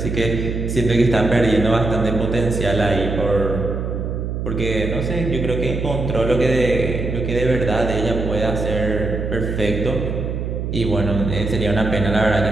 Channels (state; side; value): noise; right; hum, 3 dB below the sound